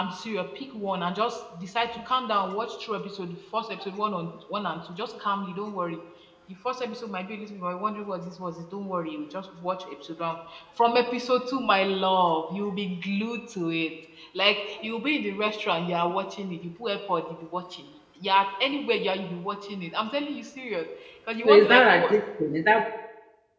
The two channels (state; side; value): identical; both; correlation 1.00